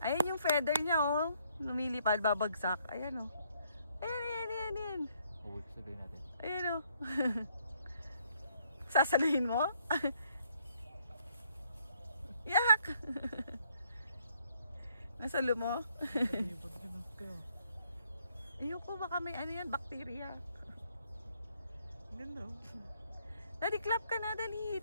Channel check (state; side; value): inverted; both; correlation -0.69